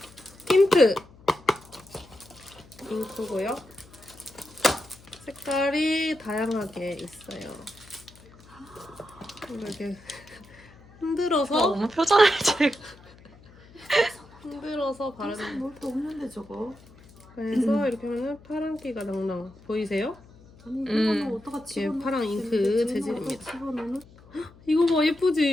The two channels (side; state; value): left; noise; hum, 24 dB below the sound